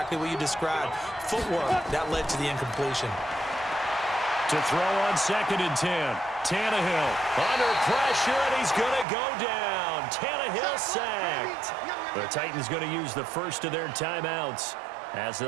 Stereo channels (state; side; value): drops out; left; at 9.1 s